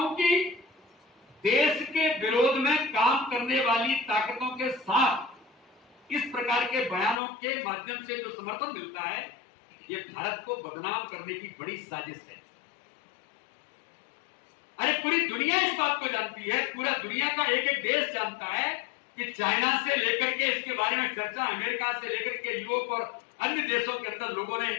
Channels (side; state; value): right; drops out; at 7.2 s